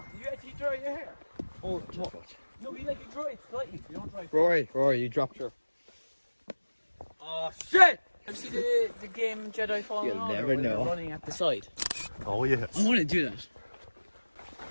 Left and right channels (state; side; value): inverted; both; correlation -1.00